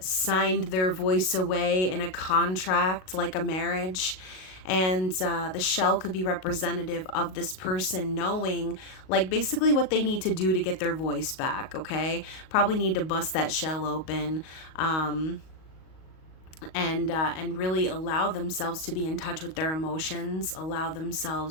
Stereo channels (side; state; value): right; late; 38 ms